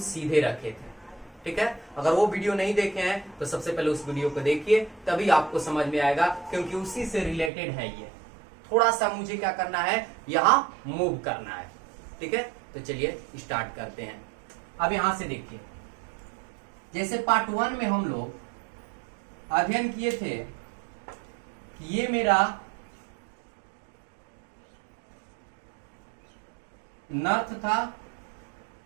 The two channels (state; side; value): drops out; left; at 7.5 s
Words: सीधे रखे थे। ठीक है, अगर वो वीडियो नहीं देखे हैं तो सबसे पहले उस वीडियो को देखिए, तभी आपको समझ में आएगा, क्योंकि उसी से रिलेटेड है ये। थोड़ा सा मुझे क्या करना है, यहां मूव करना है। ठीक है, तो चलिए स्टार्ट करते हैं। अब यहां से देखिए, जैसे पार्ट 1 में हम लोग अध्ययन किए थे कि ये मेरा नॉर्थ था